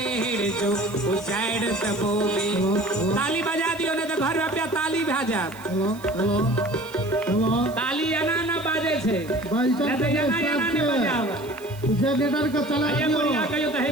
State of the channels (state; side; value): noise; right; hiss, 21 dB below the sound